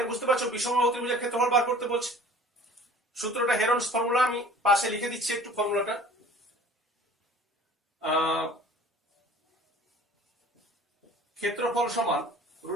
বুঝতে পারছো বিষমবাহু ত্রিভুজের ক্ষেত্রফল বার করতে বলছে। সূত্রটা হেরনস ফর্মুলা, আমি পাশে লিখে দিচ্ছি একটু ফর্মুলাটা। ক্ষেত্রফল সমান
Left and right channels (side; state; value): both; normal; correlation 0.47